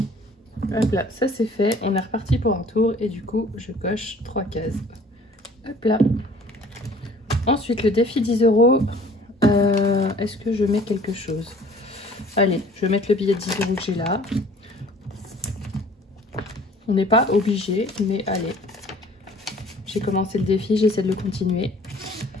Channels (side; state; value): both; normal; correlation 0.52